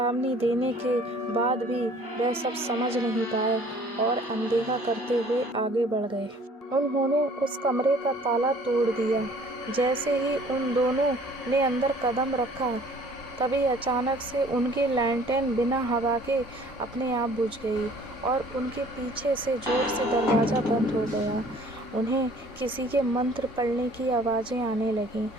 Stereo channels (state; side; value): normal; both; correlation 0.54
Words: देने के बाद भी वह सब समझ नहीं पाए और अनदेखा करते हुए आगे बढ़ गए। उन्होंने उस कमरे का ताला तोड़ दिया। जैसे ही उन दोनों ने अंदर कदम रखा तभी अचानक से उनकी लैंटेन बिना हवा के अपने आप बुझ गई और उनके पीछे से जोर से दरवाज़ा बंद हो गया। उन्हें किसी के मंत्र पढ़ने की आवाज़ें आने लगीं।